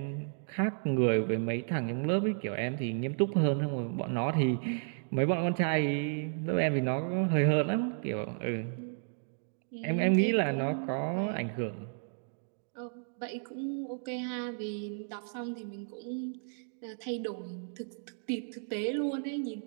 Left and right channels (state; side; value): silent; left; digital silence